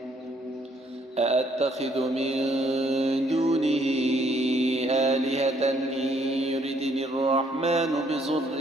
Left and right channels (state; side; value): normal; both; correlation 0.67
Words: أأتخذ من دونه آلهة إن يردني الرحمن بضر